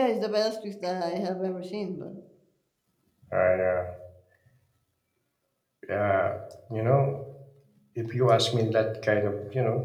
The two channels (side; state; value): both; identical; correlation 1.00